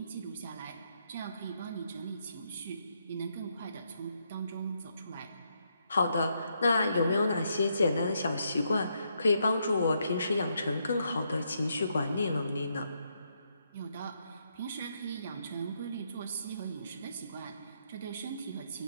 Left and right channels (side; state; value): both; inverted; correlation -0.77